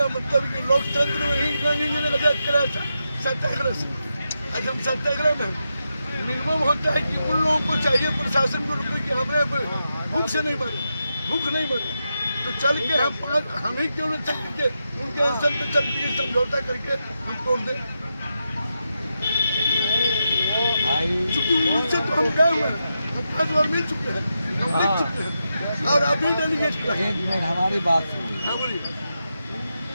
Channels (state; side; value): inverted; both; correlation -0.87